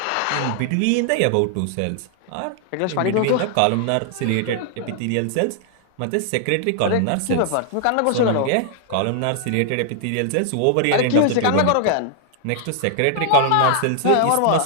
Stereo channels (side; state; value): both; different; correlation 0.00